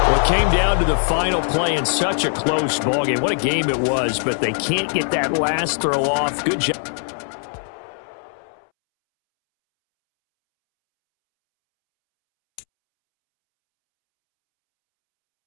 Well, it came down to the final play in such a close ballgame. What a game it was, but they can't get that last throw off. Good job.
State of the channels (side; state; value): right; silent; 65 dB below the other